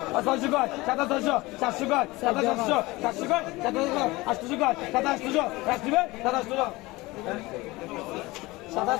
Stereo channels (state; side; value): quieter; right; 21.3 dB